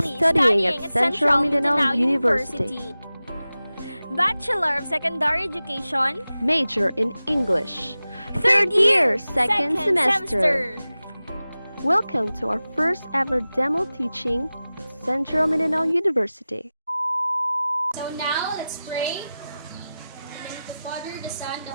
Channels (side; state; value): both; inverted; correlation -0.96